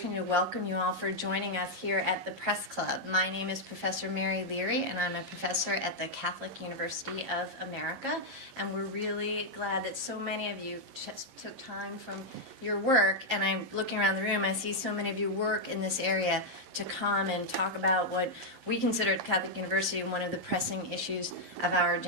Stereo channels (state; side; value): late; left; 11 ms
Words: to welcome you all for joining us here at the Press Club. My name is Professor Mary Leary, and I'm a professor at the Catholic University of America, and we're really glad that so many of you just took time from your work, and I'm looking around the room, I see so many of you work in this area to come and talk about what we consider at Catholic University one of the pressing issues of our